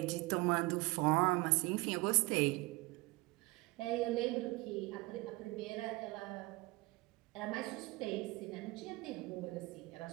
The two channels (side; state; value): left; quieter; 22.9 dB